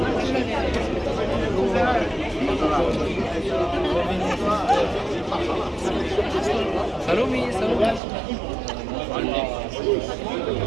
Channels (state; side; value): drops out; left; at 8.0 s